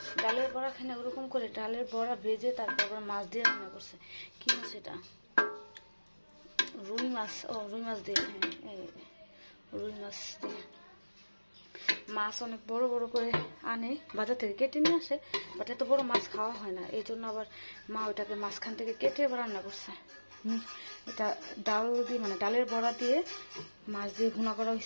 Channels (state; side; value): inverted; both; correlation -1.00